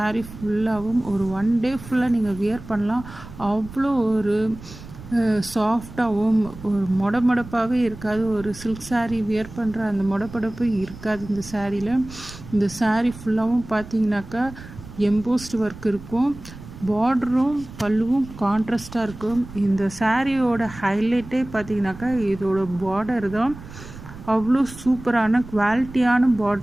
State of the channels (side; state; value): right; noise; rumble, 15 dB below the sound